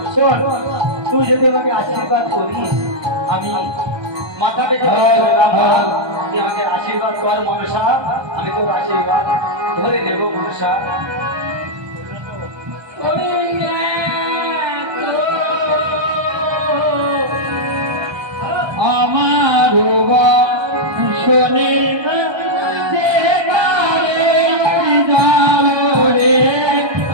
শোন, তুই যদি আমাকে আশীর্বাদ করিস আমি মাথা পেতে তুই আমাকে আশীর্বাদ কর মনসা, আমি তোর আশীর্বাদ ধরে নেব মনসা। আমার শোনে না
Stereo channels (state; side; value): late; left; 1.2 ms